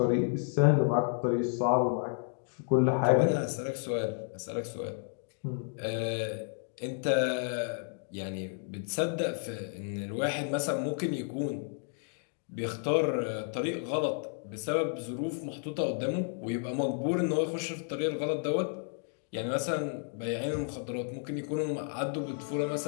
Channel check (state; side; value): silent; right; 56 dB below the other